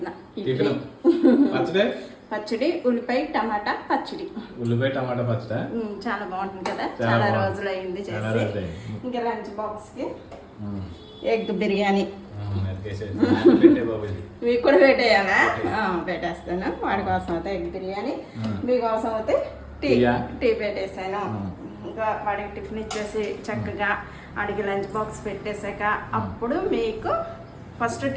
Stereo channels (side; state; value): both; identical; correlation 1.00